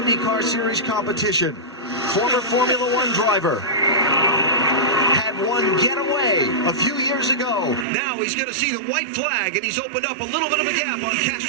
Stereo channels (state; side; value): drops out; left; at 7.9 s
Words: Series competition. Former Formula One driver. Had one getaway a few years ago. Now he's going to see the white flag, and he's opened up a little bit of a gap on